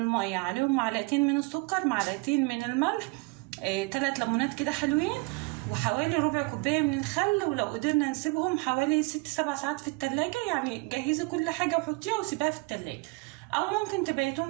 عليهم معلقتين من السكر، معلقتين من الملح، 3 ليمونات كده حلوين، وحوالي ربع كوبايه من الخل. ولو قدرنا نسيبهم حوالي 6-7 ساعات في التلاجة، يعني جهزي كل حاجه وحطيها وسيبها في التلاجة، او ممكن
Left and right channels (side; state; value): left; quieter; 26.9 dB